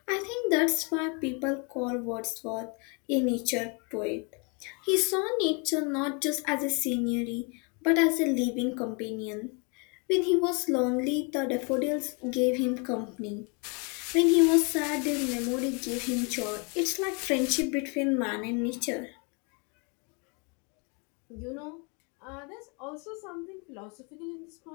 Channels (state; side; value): quieter; right; 34.0 dB